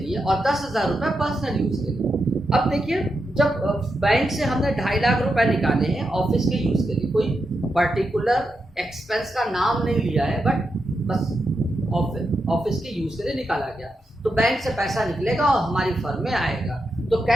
और 10,000 रुपए पर्सनल यूज के लिए। अब देखिए जब बैंक से हमने 2.5 लाख रुपए निकाले हैं ऑफिस के यूज के लिए, कोई पर्टिकुलर एक्सपेंस का नाम नहीं लिया है, बट बस ऑफिस के यूज के लिए निकाला गया, तो बैंक से पैसा निकलेगा और हमारी फर्म में आएगा। तो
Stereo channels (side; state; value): both; normal; correlation 0.86